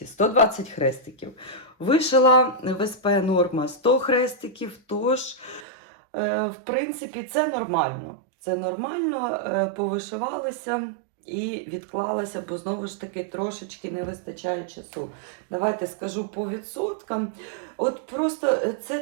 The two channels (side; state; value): left; drops out; at 5.7 s